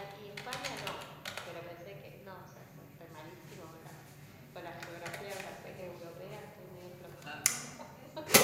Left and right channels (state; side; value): identical; both; correlation 1.00